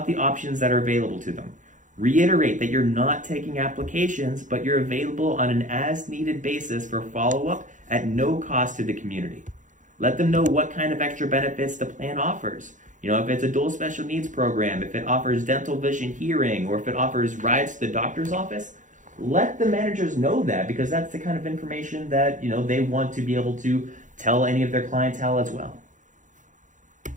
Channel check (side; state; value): left; late; 0.37 ms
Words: the options that are available to them. Reiterate that you're not taking applications, but you're available on an as-needed basis for follow-up at no cost to the community. Let them know what kind of extra benefits the plan offers. If it's a dual special needs program, if it offers dental, vision, hearing, or if it offers rides to the doctor's office, let the managers know that, because that's the kind of information that, they want to be able to tell any of their clientele as well.